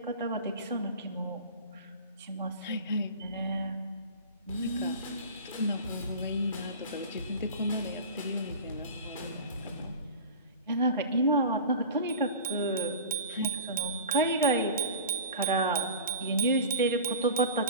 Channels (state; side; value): inverted; both; correlation -0.36